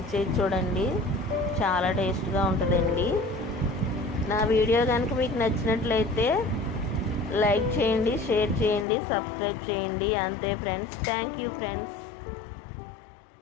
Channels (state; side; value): drops out; right; at 8.8 s